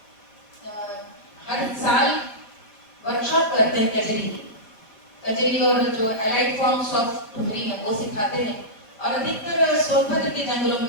हर साल वर्कशॉप करते हैं कजरी और जो एलाइड फॉर्म्स ऑफ ठुमरी है वो सिखाते हैं, और अधिकतर सोनभद्र के जंगलों में,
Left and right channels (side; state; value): right; late; 5.0 ms